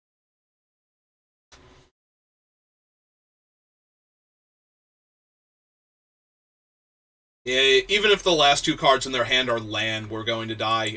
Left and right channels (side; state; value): both; identical; correlation 1.00